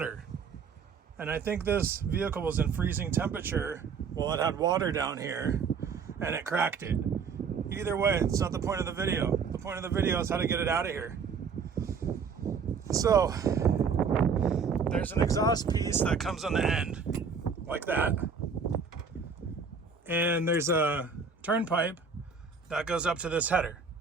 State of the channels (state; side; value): quieter; left; 5.6 dB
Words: And I think this vehicle was in freezing temperature while it had water down here and it cracked it. Either way, it's not the point of the video. The point of the video is how to get it out of here. So there's an exhaust piece that comes on the end like that. And there's a turn pipe that goes up to this header.